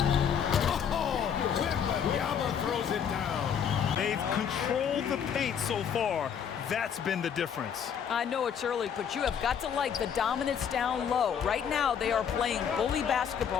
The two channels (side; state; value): right; quieter; 7.9 dB